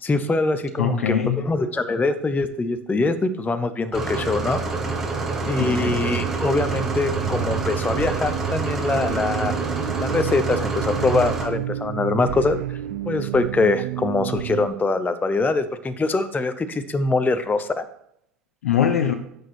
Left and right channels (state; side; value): normal; both; correlation 0.60